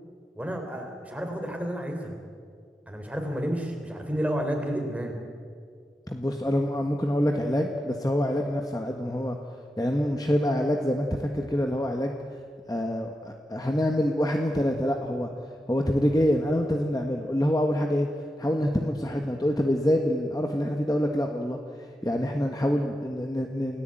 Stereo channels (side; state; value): both; normal; correlation 0.89